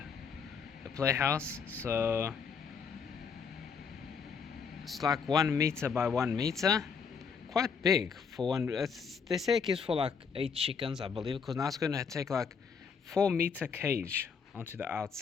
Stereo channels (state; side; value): quieter; right; 6.1 dB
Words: playhouse. So it's like 1 meter by 1 meter, quite big for one. They say it gives for like 8 chickens, I believe, because now it's going to take like 4-meter cage onto the